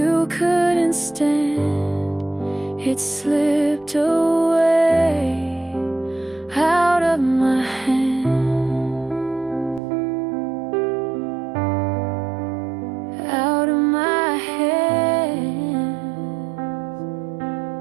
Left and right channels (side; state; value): left; drops out; at 9.8 s